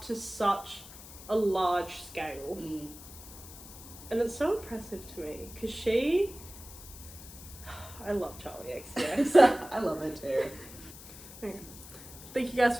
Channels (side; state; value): left; noise; hiss, 16 dB below the sound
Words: to such a large scale. And it's so impressive to me, because I love CharlieXCX. I love it too. Okay. Thank you guys